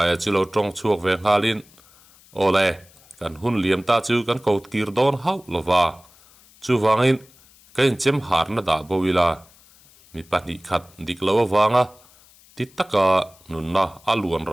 chu lo tong chuak ve ngalin ole kan hun liam ta chu kan kaut kir don hau lova chu wangin kain chem har na da bowila mi pani khat dik lo wanga ti taka nunna aluan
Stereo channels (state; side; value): noise; left; hiss, 27 dB below the sound